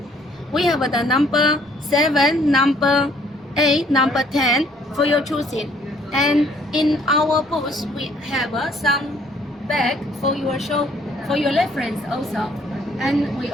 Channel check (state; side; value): normal; both; correlation 0.62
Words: We have the number 7, number 8, number 10 for your choosing. And in our booth, we have some bag for your show, for your reference also. And we